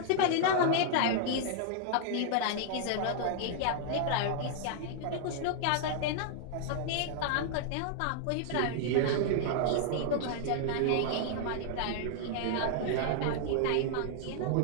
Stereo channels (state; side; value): different; both; correlation -0.01